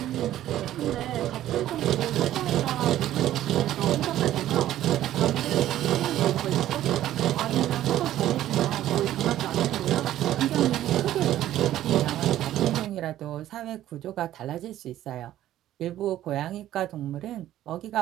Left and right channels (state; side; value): quieter; left; 13.0 dB